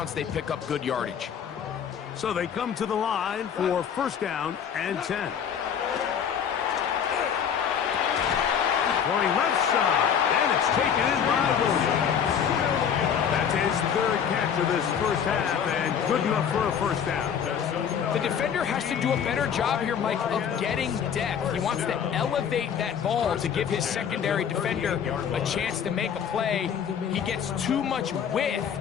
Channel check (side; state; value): right; quieter; 7.9 dB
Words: they pick up good yardage. So they come to the line for first down and 10. Throwing left side, and it's taken in by Williams. That's his third catch of this first half, and good enough for a first down. The defender has to do a better job here, Mike, of getting depth. He wants to elevate that ball to give his secondary defender a chance to make a play. He gets too much width,